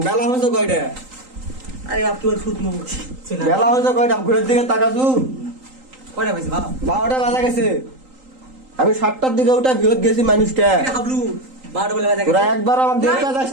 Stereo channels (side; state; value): left; late; 3.8 ms